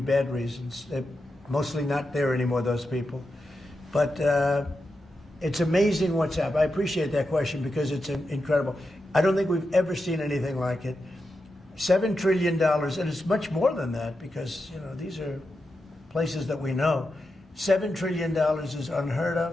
reasons. They're mostly not there anymore, those people. But it's amazing what's happened. I appreciate that question because it's incredible. I don't think we've ever seen anything like it. $7 trillion, and it's much more than that because these are places that we know. $7 trillion is unheard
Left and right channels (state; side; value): normal; both; correlation 0.88